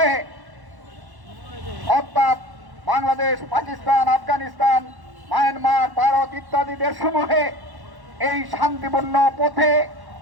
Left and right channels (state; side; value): late; left; 1.1 ms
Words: অর্থাৎ বাংলাদেশ, পাকিস্তান, আফগানিস্তান, মায়ানমার, ভারত ইত্যাদি দেশসমূহে এই শান্তিপূর্ণ পথে